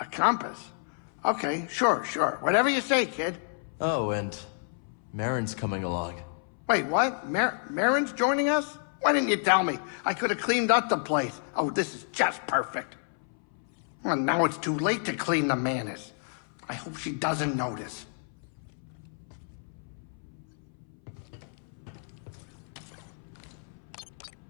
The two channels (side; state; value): right; silent; 58 dB below the other